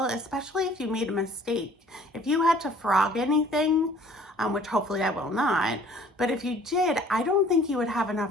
especially if you made a mistake. If you had to frog anything, which hopefully I will not, but if you did, I don't think you would have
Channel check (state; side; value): normal; both; correlation 0.54